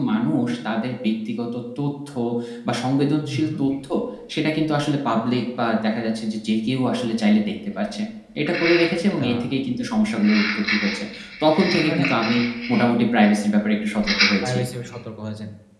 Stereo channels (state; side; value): identical; both; correlation 1.00